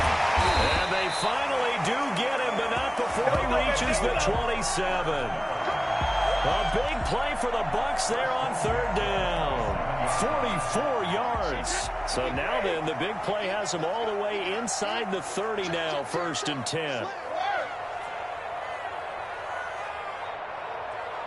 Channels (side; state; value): both; identical; correlation 1.00